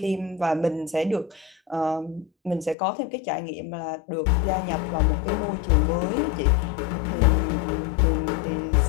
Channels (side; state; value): right; drops out; at 2.8 s